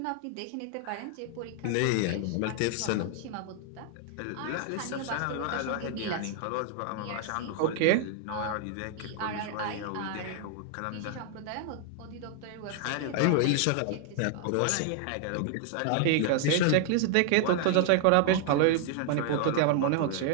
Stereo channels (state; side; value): different; both; correlation 0.00